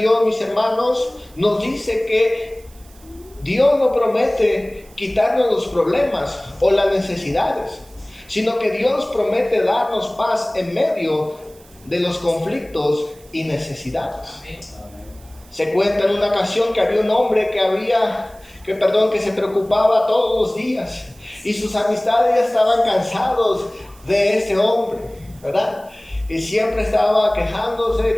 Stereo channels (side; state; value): right; noise; hiss, 26 dB below the sound